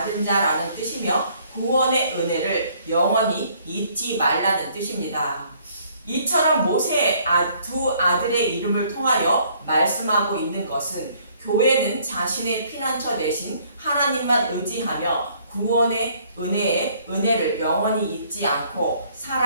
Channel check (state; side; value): inverted; both; correlation -0.62